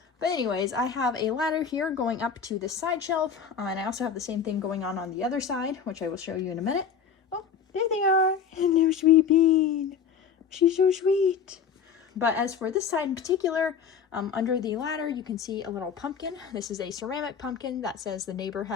But anyways, I have a ladder here going up to this side shelf, and I also have the same thing going on the other side, which I will show you in a minute. Oh, there they are. Hello, sweet bean. She's so sweet. But as for this side in particular, under the ladder, you can see a little pumpkin. This is a ceramic pumpkin that says the neighbor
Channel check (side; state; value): right; quieter; 6.7 dB